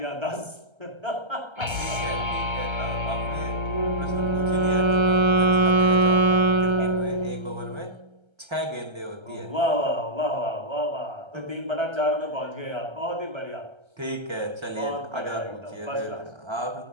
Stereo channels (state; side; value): late; left; 1.3 ms